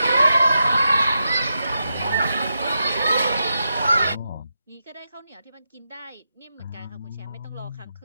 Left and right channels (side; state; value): both; inverted; correlation -0.87